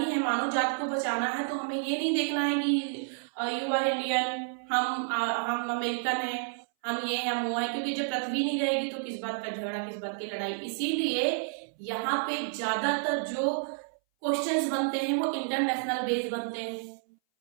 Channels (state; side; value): silent; left; 58 dB below the other